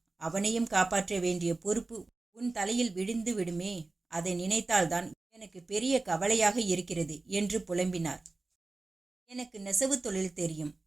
அவனையும் காப்பாற்ற வேண்டிய பொறுப்பு உன் தலையில் விழுந்து விடுமே. அதை நினைத்தால்தான் எனக்கு பெரிய கவலையாக இருக்கிறது என்று புலம்பினார். எனக்கு நெசவு தொழில் தெரியும்.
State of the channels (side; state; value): left; quieter; 3.4 dB